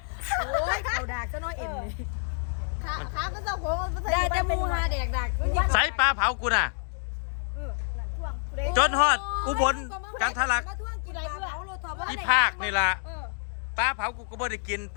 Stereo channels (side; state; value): right; silent; digital silence